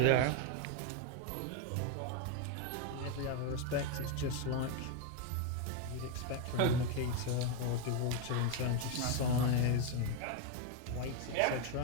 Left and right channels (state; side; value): different; both; correlation 0.02